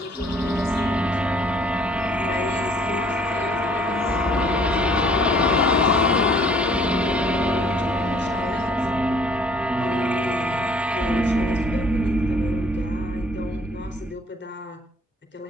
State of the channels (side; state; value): both; normal; correlation 0.59